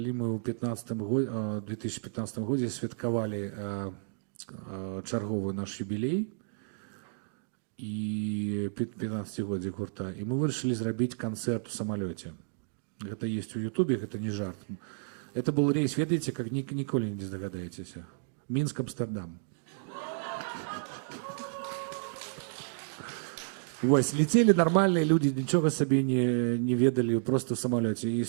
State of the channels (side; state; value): left; silent; digital silence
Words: мы ў 2015 годзе святкавалі чарговы наш юбілей і 15-годзе гурта, і мы вырашылі зрабіць канцэрт у самалёце. Это есть у Ютубе, это не жарт. Это был рейс, ведаете, как ніколі не здагадаетесь. Мінск-Амстердам. Вось, летели нормальные люди, ничего себе не ведали, просто в самолете. И